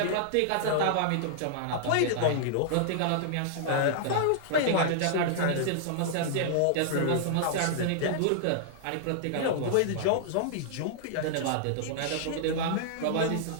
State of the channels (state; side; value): different; both; correlation -0.01